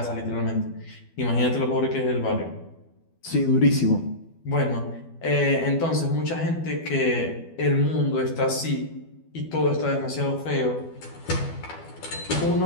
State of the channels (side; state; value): right; late; 12 ms